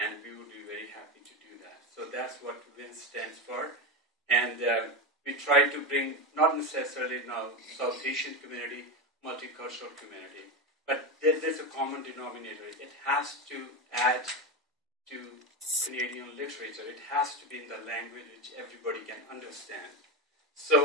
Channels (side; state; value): both; normal; correlation 0.16